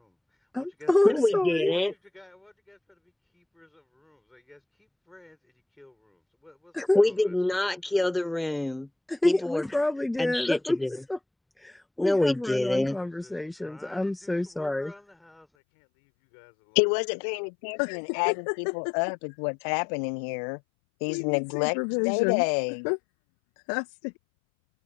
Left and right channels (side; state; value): right; drops out; at 15.5 s